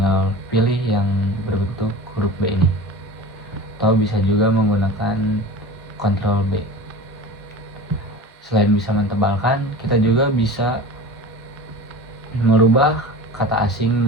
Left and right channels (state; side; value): normal; both; correlation 0.34